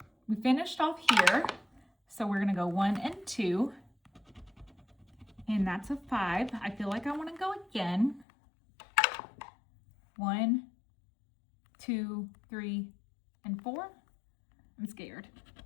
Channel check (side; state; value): right; drops out; at 8.2 s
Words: we finished off here. So we're going to go 1 and 2, and that's a 5. I feel like I want to go again. 1, 2, 3, and 4. I'm scared.